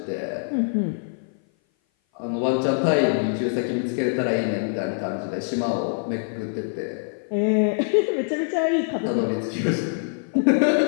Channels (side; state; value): right; silent; 57 dB below the other